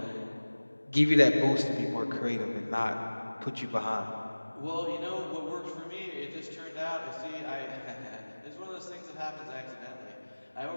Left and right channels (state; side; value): inverted; both; correlation -1.00